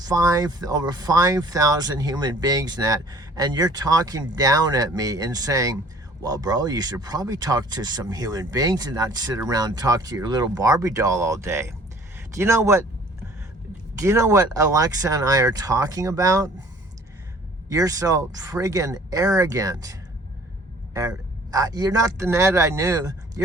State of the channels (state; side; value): normal; both; correlation 0.52